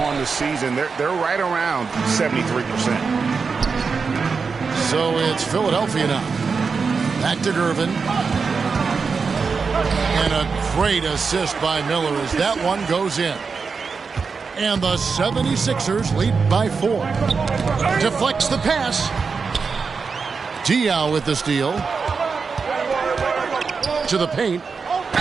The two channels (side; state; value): left; quieter; 5.1 dB